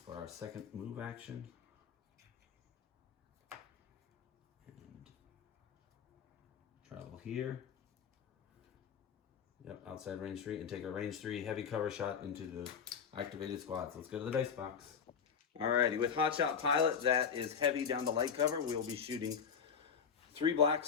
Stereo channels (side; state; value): right; quieter; 6.9 dB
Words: for our second move action. And travel here. Yep, outside range 3, and take a range 3 heavy cover shot into the activated squads. Let's go to the dice box. Alrighty, with Hotshot Pilot, that is heavy down to light cover. We will be shooting 3